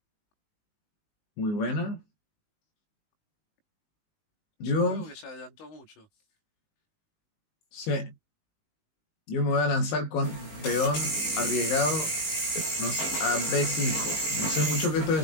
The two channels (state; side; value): late; right; 19 ms